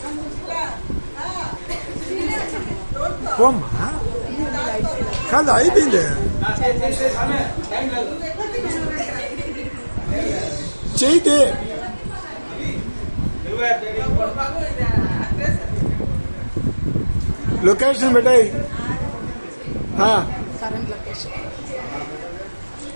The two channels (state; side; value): inverted; both; correlation -1.00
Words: పోమ్మా, కాదు అయిపోయింది. చేయితే లొకేషన్ పెట్టాయి.